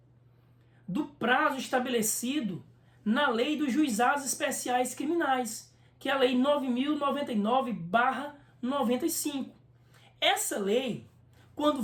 do prazo estabelecido na Lei dos Juizados Especiais Criminais, que é a Lei 9.099/95. Essa lei, quando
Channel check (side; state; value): both; identical; correlation 1.00